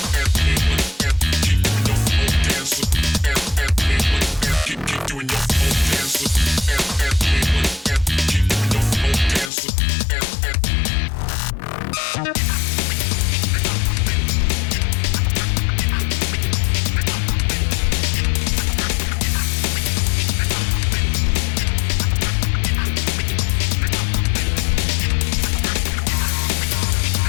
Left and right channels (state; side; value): drops out; right; at 9.5 s